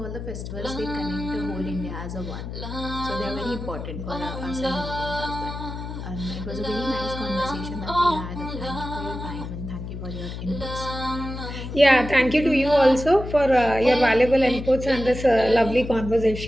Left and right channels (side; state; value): left; noise; hum, 8 dB below the sound